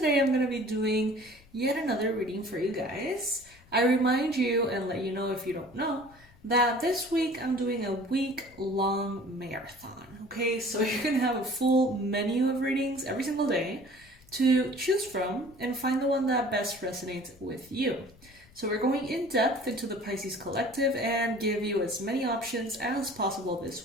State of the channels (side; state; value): left; noise; rumble, 26 dB below the sound